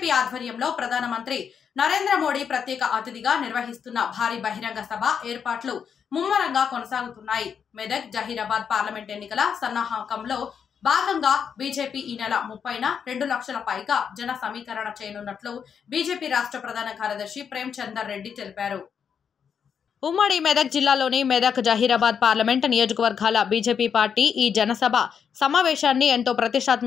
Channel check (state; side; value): quieter; right; 7.2 dB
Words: ఆధ్వర్యంలో ప్రధానమంత్రి నరేంద్ర మోడీ ప్రత్యేక అతిథిగా నిర్వహిస్తున్న భారీ బహిరంగ సభ ఏర్పాట్లు ముమ్మరంగా కొనసాగుతున్నాయి. మెదక్ జహీరాబాద్ పార్లమెంట్ ఎన్నికల సన్నాహకంలో భాగంగా బీజేపీ ఈ నెల 30న 2 లక్షల పైగా జన సమీకరణ చేయనున్నట్లు బీజేపీ రాష్ట్ర ప్రధాన కార్యదర్శి ప్రేమ్ చందర్ రెడ్డి తెలిపారు. ఉమ్మడి మెదక్ జిల్లాలోని మెదక్ జహీరాబాద్ పార్లమెంట్ నియోజకవర్గాల బీజేపీ పార్టీ ఈ జనసభ సమావేశాన్ని ఎంతో